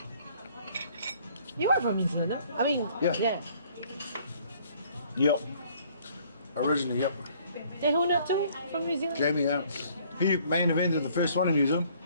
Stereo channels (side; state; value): both; inverted; correlation -0.59